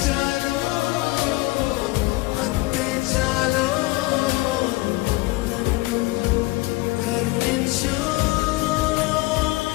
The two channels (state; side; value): quieter; right; 21.6 dB